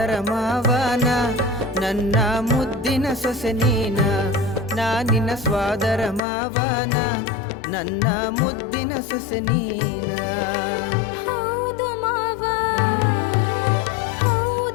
ಮಾವನ ನನ್ನ ಮುದ್ದಿನ ಸೊಸೆ ನೀನ ನಿನ್ನ ಸ್ವಾದರ ಮಾವನ ನನ್ನ ಮುದ್ದಿನ ಸೊಸೆ ನೀನ ಹೌದು ಮಾವ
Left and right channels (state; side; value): drops out; right; at 6.2 s